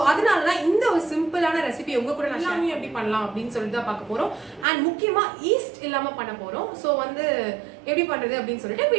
அதனாலதான் இந்த ஒரு சிம்பிளான ரெசிபி உங்க கூட நான் எல்லாமே எப்படி பண்ணலாம் அப்படின்னு சொல்லிட்டு தான் பார்க்க போறோம். அண்ட் முக்கியமா ஈஸ்ட் இல்லாம பண்ண போறோம். சோ வந்து எப்படி பண்றது அப்படின்னு சொல்லிட்டு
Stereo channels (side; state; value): left; drops out; at 4.7 s